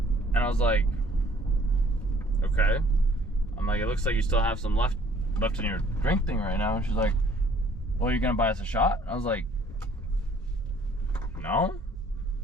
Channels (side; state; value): both; normal; correlation 0.59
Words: And I was like, okay. I'm like, it looks like you still have some left in your drink thing right now. And she's like, well, you're gonna buy us a shot? I was like, no.